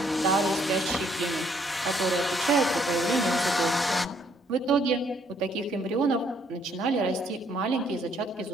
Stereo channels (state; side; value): normal; both; correlation 0.67